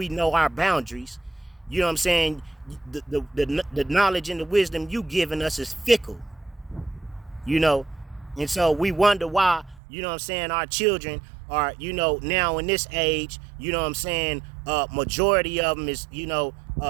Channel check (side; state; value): left; drops out; at 9.8 s